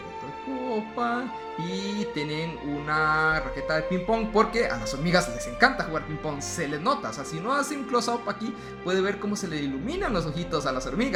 de copa y tienen una raqueta de ping pong, porque a las hormigas les encanta jugar ping pong, se les nota. O sea, si no hacen close up aquí, puede ver cómo se le iluminan los ojitos a las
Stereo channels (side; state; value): both; identical; correlation 1.00